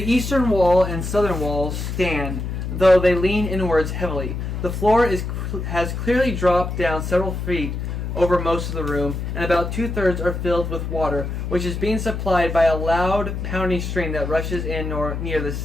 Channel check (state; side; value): noise; left; hum, 4 dB below the sound